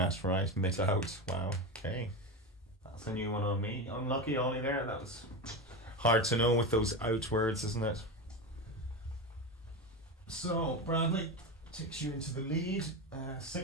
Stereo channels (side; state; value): both; normal; correlation 0.19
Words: right, mit Wow. Okay. That's a new one on me. Unlucky, Ollie. There. That was hard to know with those out words, isn't it? So Bradley takes you into the lead.